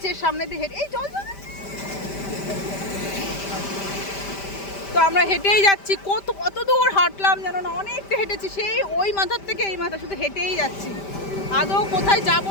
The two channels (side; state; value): right; late; 5.1 ms